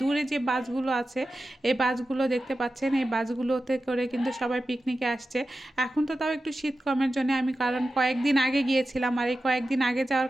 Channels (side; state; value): both; normal; correlation 0.93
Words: দূরে যে বাসগুলো আছে, এই বাসগুলো দেখতে পাচ্ছেন, এই বাসগুলোতে করে কিন্তু সবাই পিকনিকে আসছে। এখন তো তাও একটু শীত কমের জন্য আমি, কারণ কয়েকদিন আগে গিয়েছিলাম, আর এই কয়েকদিন আগে যাওয়ার